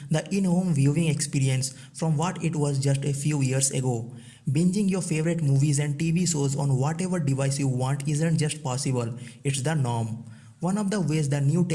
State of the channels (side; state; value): both; identical; correlation 1.00